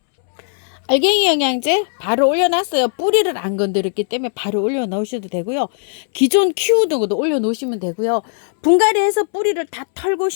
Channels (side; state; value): right; silent; 67 dB below the other